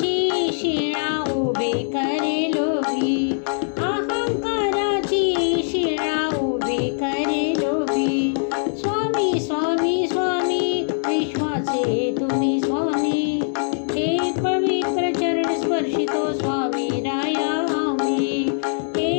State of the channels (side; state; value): right; silent; 64 dB below the other